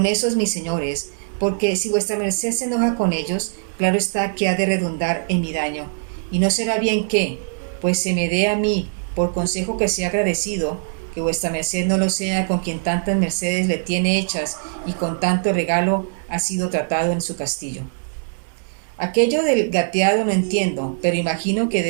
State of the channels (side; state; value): left; silent; digital silence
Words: esos mis señores, porque si vuestra merced se enoja con ellos, claro está que ha de redundar en mi daño, y no será bien que, pues se me dé a mí, por consejo que sea agradecido, que vuestra merced no lo sea con quien tantas mercedes le tiene hechas y con tanto regalo ha sido tratado en su castillo. Aquello del gateado no entiendo, pero imagino que